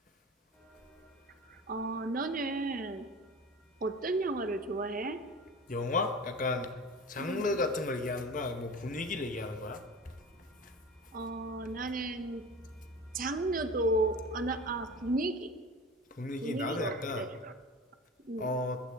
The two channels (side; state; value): both; normal; correlation 0.36